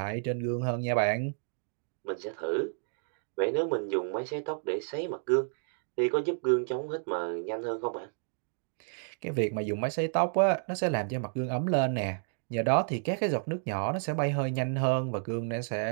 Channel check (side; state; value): left; silent; digital silence